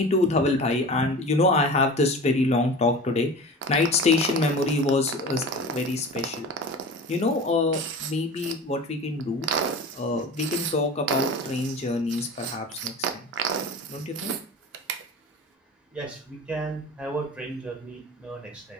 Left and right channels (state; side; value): normal; both; correlation 0.35